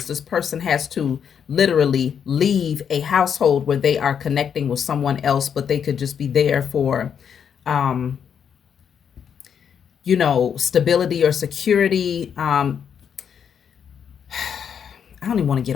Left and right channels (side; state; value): right; quieter; 7.7 dB